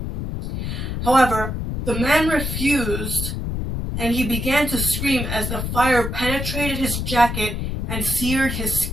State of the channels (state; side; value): noise; left; rumble, 3 dB below the sound